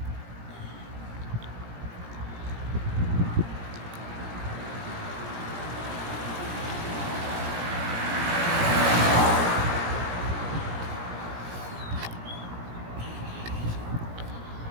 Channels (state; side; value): late; left; 17 ms